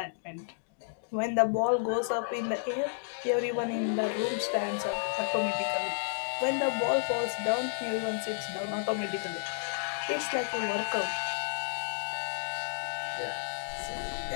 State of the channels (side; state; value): right; silent; digital silence